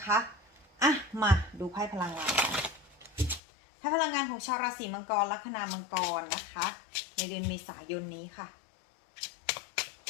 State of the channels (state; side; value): drops out; right; at 3.4 s